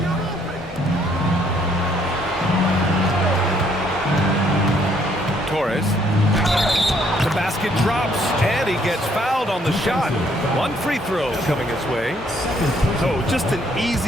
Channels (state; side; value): normal; both; correlation 0.67